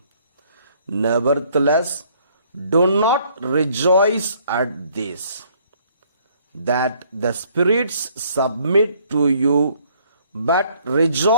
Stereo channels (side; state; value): both; inverted; correlation -0.62